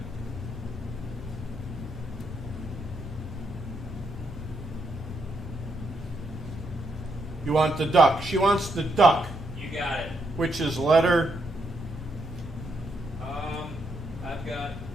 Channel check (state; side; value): normal; both; correlation 0.78